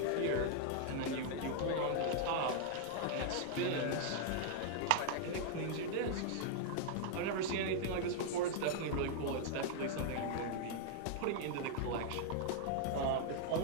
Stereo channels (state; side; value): different; both; correlation -0.01